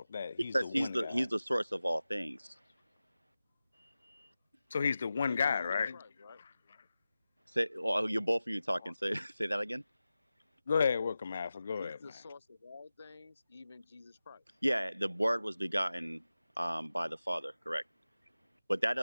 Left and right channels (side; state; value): both; inverted; correlation -0.95